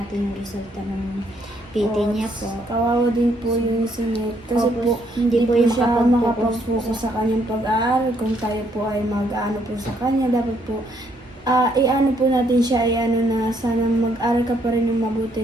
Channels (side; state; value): both; normal; correlation 0.70